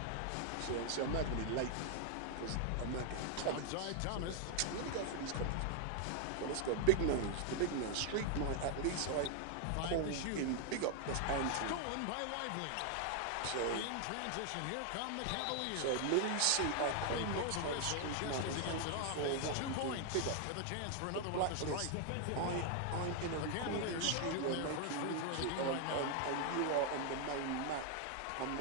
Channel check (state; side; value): different; both; correlation 0.00